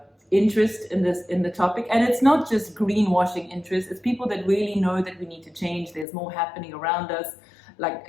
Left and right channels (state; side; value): drops out; right; at 6.1 s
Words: interest in the topic, and it's not just greenwashing interest. It's people that really know that we need to change. There's more happening around us. Like,